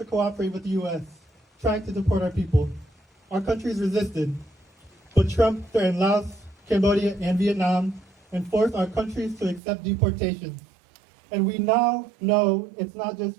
cooperate with the U.S., trying to deport our people. Our countries resisted, but Trump threatened Laos, Cambodia, and Vietnam and forced our countries to accept deportation. And we now know it's not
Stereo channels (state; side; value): drops out; left; at 9.6 s